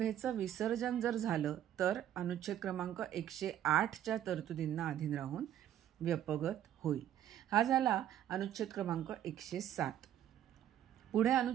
विसर्जन जर झालं तर अनुच्छेद क्रमांक 108च्या तरतुदींना अधीन राहून व्यपगत होईल. हा झाला अनुच्छेद क्रमांक 107. पुढे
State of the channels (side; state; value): left; quieter; 11.2 dB